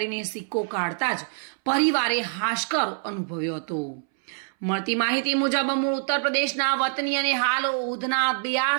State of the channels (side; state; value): left; silent; 62 dB below the other